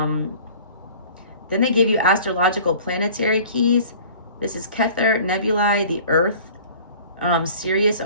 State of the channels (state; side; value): inverted; both; correlation -0.47